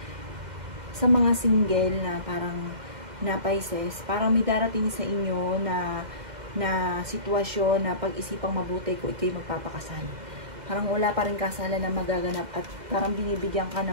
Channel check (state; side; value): late; left; 2.1 ms